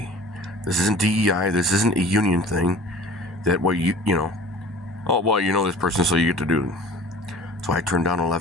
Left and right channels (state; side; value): normal; both; correlation 0.44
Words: This isn't DEI. This isn't a union thing that, this person, so you get to do it. So I turned down an